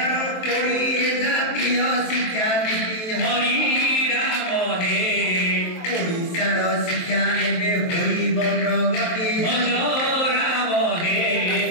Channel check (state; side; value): late; right; 23 ms